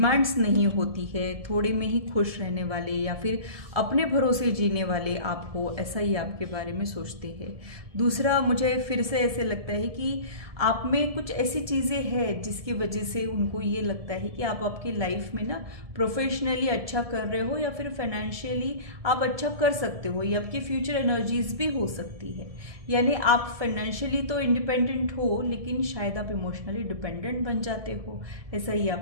नहीं होती है, थोड़े में ही खुश रहने वाले, या फिर अपने भरोसे जीने वाले आप हो, ऐसा ही आपके बारे में सोचते हैं। दूसरा, मुझे फिर से ऐसे लगता है कि आप में कुछ ऐसी चीज़ें हैं जिसकी वजह से उनको ये लगता है कि आप आपकी लाइफ में ना प्रोफेशनली अच्छा कर रहे हो, या फिर फाइनेंशियली आप अच्छा कर सकते हो, या आपकी फ्यूचर एनर्जीज भी हो सकती है। यानी आप फाइनेंशियली तो इंडिपेंडेंट हो, लेकिन शायद आप इमोशनली डिपेंडेंट बन जाते हो, ऐसा ही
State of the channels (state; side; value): late; left; 1.7 ms